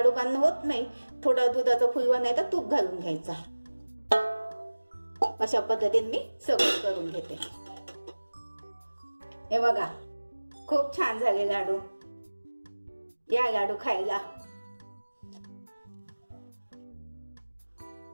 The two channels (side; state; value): both; inverted; correlation -1.00